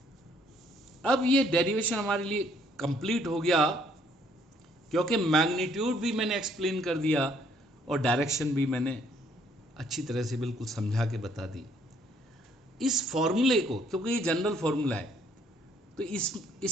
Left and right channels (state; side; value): normal; both; correlation 0.65